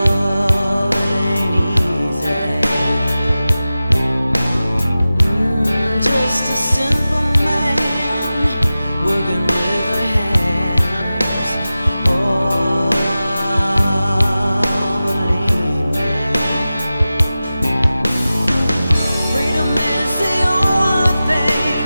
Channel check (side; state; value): both; inverted; correlation -0.95